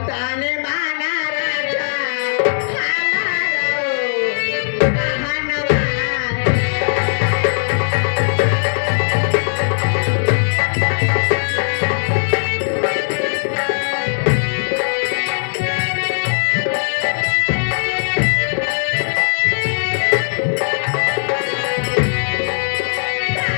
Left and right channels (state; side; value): silent; right; digital silence